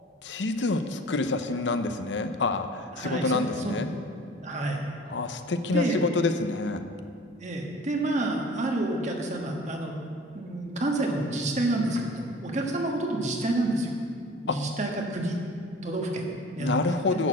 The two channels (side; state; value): both; normal; correlation 0.44